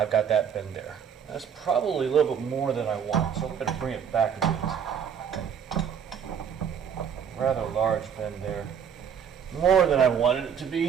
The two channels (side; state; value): left; quieter; 7.8 dB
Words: got that bend there. That's probably a little bit more than I want, so I'm going to bring it back a bit. Rather large bend there. More than I wanted it to